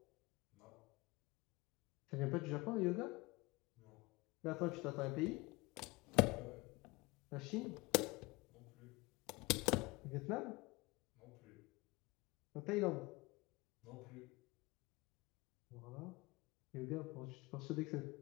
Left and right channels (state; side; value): quieter; right; 23.9 dB